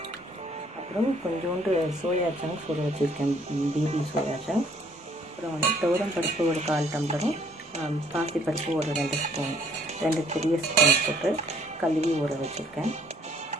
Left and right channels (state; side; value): normal; both; correlation 0.62